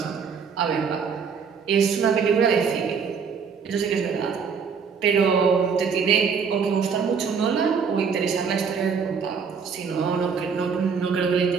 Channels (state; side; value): quieter; left; 6.1 dB